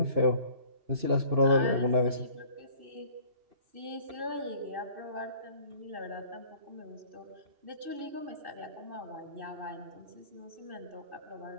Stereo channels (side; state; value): left; late; 2.6 ms